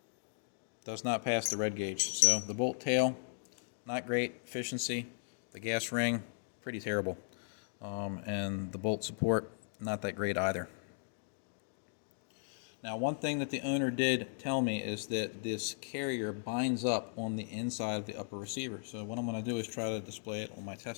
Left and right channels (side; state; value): right; silent; digital silence